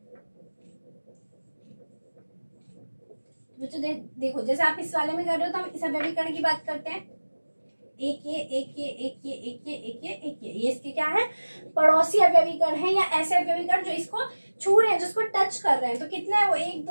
बच्चों देखो जैसे आप इस वाले में कर रहे हो तो हम इस अवयवी कण की बात करते हैं। एक ये इसके क्या है? पड़ोसी अवयवी कण है, या ऐसे अवयवी कण जो इसको छू रहे हैं, जिसको टच कर रहे हैं। तो कितना है वो? 1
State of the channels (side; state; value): both; inverted; correlation -1.00